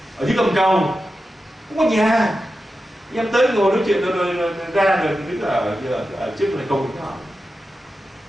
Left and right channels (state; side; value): normal; both; correlation 0.91